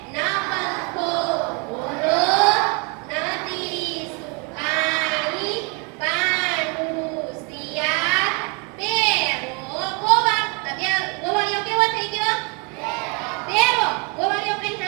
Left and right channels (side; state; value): left; quieter; 33.4 dB